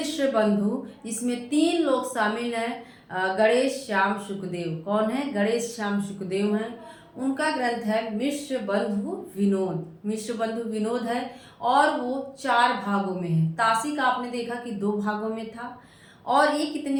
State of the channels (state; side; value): identical; both; correlation 1.00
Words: बंधु, जिसमें 3 लोग शामिल हैं। गणेश श्याम शुकदेव। कौन है? गणेश श्याम शुकदेव हैं। उनका ग्रंथ है मिश्र बंधु विनोद। मिश्र बंधु विनोद है और वो 4 भागों में है। तासी का आपने देखा कि 2 भागों में था, और ये